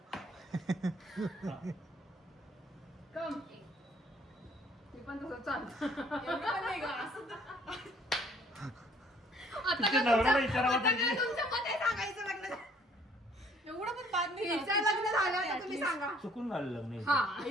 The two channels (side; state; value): both; normal; correlation 0.60